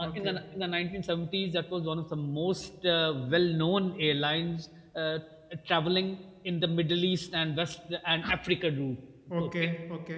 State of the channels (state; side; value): identical; both; correlation 1.00